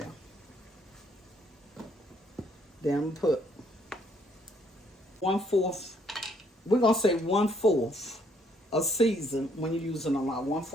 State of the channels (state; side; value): normal; both; correlation 0.68